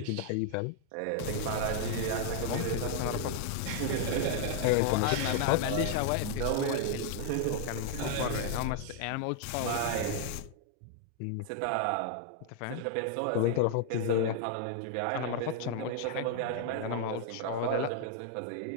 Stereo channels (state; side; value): different; both; correlation 0.00